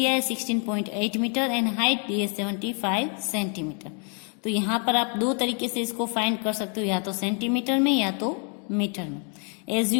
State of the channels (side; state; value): right; quieter; 39.7 dB